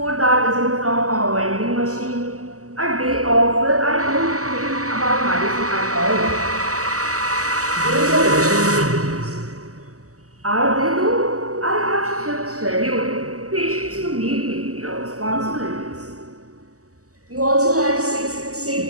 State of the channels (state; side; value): late; left; 0.66 ms